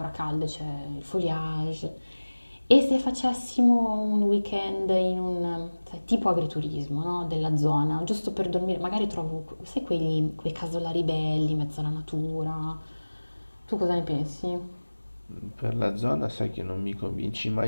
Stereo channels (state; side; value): inverted; both; correlation -1.00